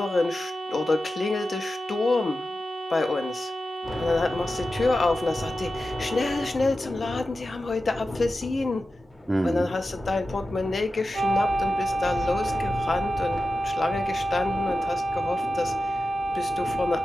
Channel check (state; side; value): normal; both; correlation 0.93